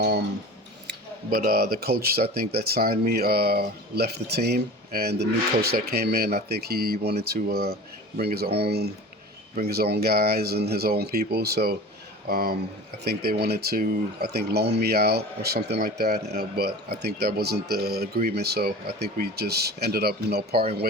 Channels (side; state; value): both; normal; correlation 0.37